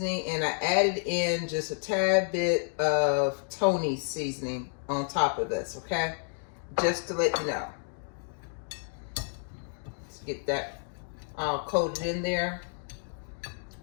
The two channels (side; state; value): right; silent; 58 dB below the other